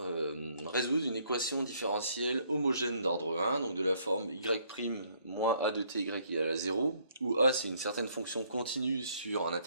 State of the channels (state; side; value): inverted; both; correlation -0.66